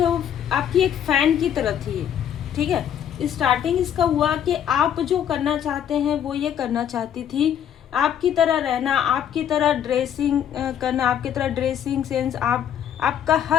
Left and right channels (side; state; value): right; quieter; 9.5 dB